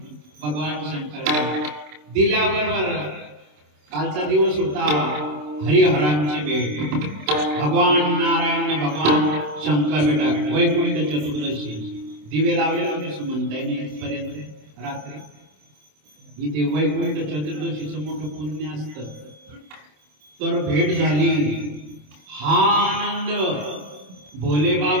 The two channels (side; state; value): left; late; 27 ms